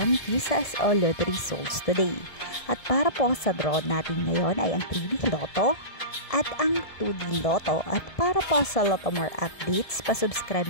Kisas o Lottery Results today. At para po sa draw natin ngayon ay ang 3D Lotto at ang 2D Lotto. At para po sa Lotto More updates, pasubscribe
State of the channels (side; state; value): right; late; 1.7 ms